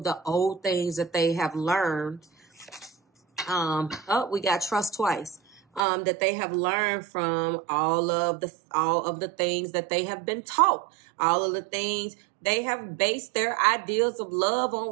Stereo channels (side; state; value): left; drops out; at 5.8 s